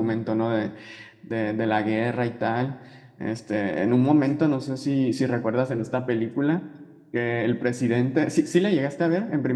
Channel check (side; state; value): both; identical; correlation 1.00